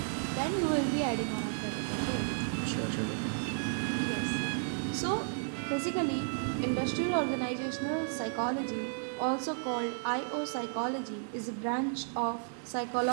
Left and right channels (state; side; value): silent; left; 56 dB below the other